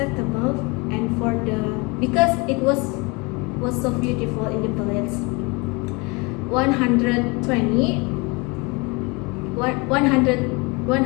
and because it was so beautiful in the village. 120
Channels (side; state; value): right; quieter; 28.1 dB